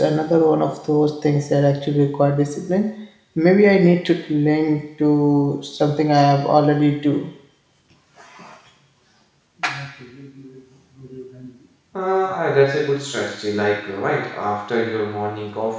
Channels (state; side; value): identical; both; correlation 1.00